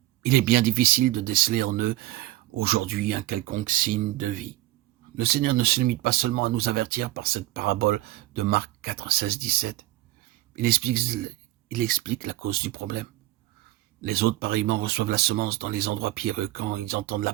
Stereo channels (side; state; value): left; quieter; 16.5 dB